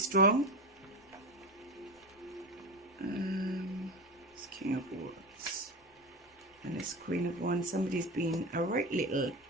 It's King of Wands and it's Queen of Wands. Somebody's been a right little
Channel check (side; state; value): both; normal; correlation 0.24